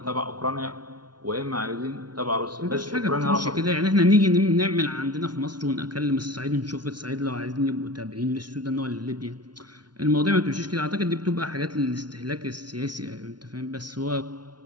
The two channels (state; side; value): late; left; 0.70 ms